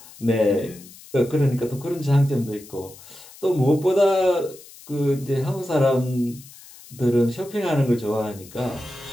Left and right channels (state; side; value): noise; left; hiss, 20 dB below the sound